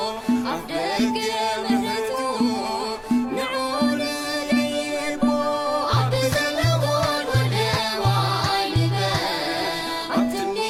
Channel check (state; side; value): identical; both; correlation 1.00